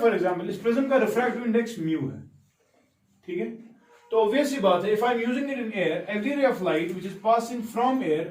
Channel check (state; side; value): identical; both; correlation 1.00